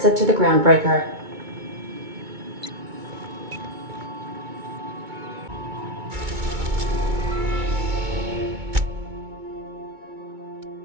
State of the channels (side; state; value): left; late; 2.2 ms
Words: to the groundbreaker.